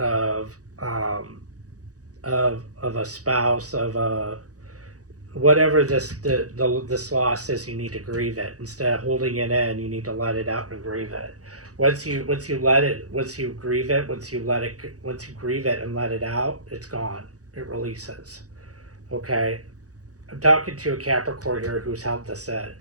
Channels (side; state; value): left; late; 0.67 ms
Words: a spouse, of a whatever this loss is. You need to grieve it instead of holding it in. You need to let it out and grieve it. Once you grieve it and let it out, it's gone. It releases. Okay, I'm talking to a Capricorn here who's held this in.